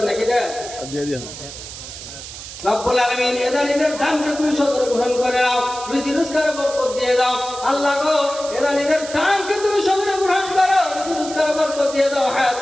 নাকি না? রব্বুল আলামিন এদানিদের দানকে তুমি সদর গ্রহণ করে নাও, রুজি রোজগারে বরকত দিয়ে দাও। আল্লাহ গো এদানিদের দানকে তুমি সদর গ্রহণ করো, রুজি রোজগারে বরকত দিয়ে দাও,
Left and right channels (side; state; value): right; noise; hiss, 12 dB below the sound